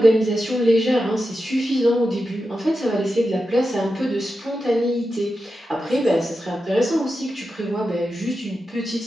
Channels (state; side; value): normal; both; correlation 0.90